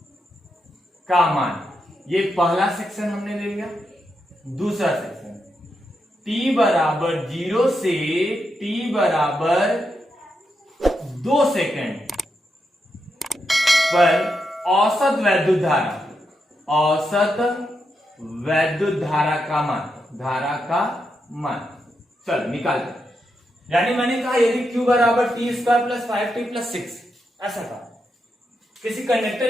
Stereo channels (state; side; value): normal; both; correlation 0.84